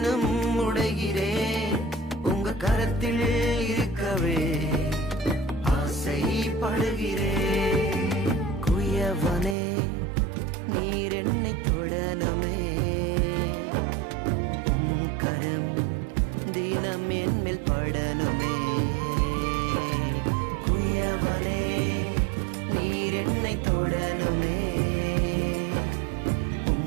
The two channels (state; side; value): drops out; left; at 9.6 s